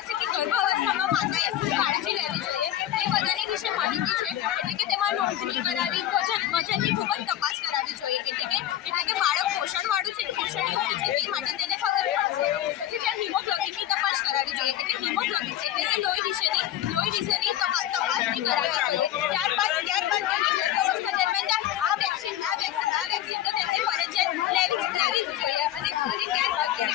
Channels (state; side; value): quieter; right; 12.3 dB